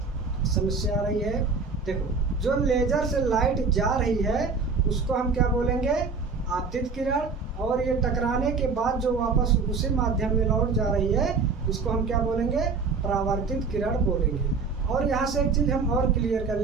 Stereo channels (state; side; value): quieter; left; 4.8 dB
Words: समस्या आ रही है। देखो, जो लेज़र से लाइट जा रही है उसको हम क्या बोलेंगे, आपतित किरण, और ये टकराने के बाद जो वापस उसी माध्यम में लौट जा रही है इसको हम क्या बोलेंगे, परावर्तित किरण बोलेंगे। और यहाँ से एक चीज़ हम और क्लियर कर